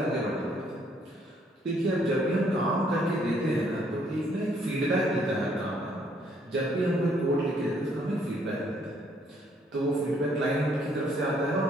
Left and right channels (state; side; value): normal; both; correlation 0.67